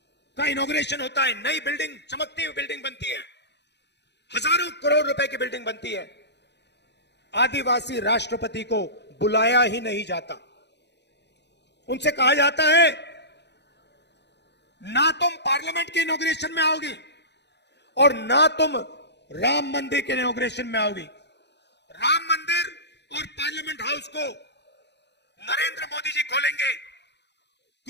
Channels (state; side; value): late; right; 0.50 ms